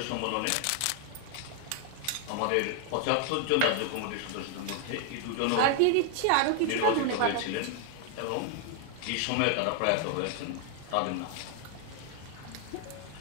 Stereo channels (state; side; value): different; both; correlation 0.00